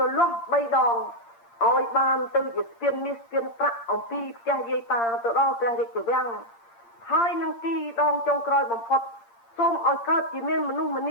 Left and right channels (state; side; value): late; right; 8.7 ms